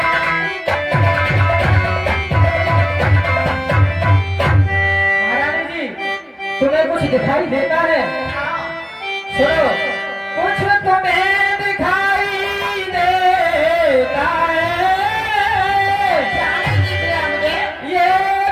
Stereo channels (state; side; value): identical; both; correlation 1.00